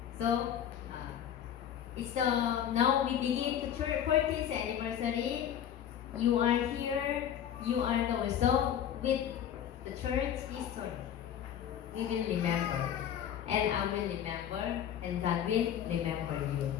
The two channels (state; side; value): quieter; right; 9.7 dB